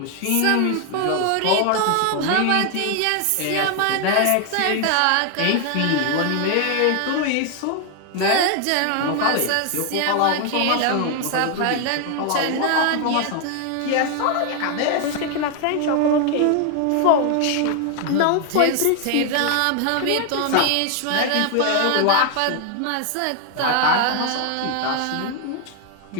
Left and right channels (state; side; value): different; both; correlation 0.00